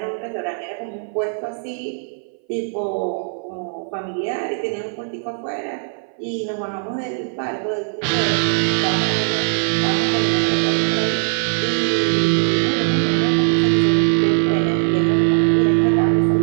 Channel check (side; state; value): left; silent; 59 dB below the other